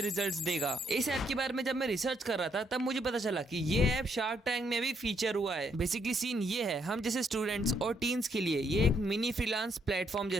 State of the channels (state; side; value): normal; both; correlation 0.73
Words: रिजल्ट्स देगा। इस ऐप के बारे में जब मैं रिसर्च कर रहा था तब मुझे पता चला कि ये ऐप शार्क टैंक में भी फीचर हुआ है। बेसिकली सीन ये है, हम जैसे स्टूडेंट्स और टीन्स के लिए ये एक मिनी फ्रीलांस प्लेटफॉर्म